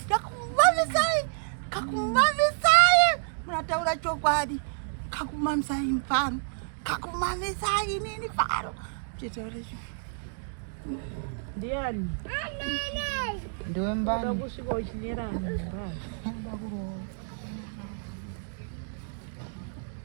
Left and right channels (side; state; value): left; silent; digital silence